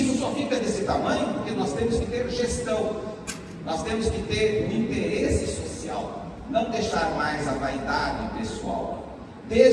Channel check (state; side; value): identical; both; correlation 1.00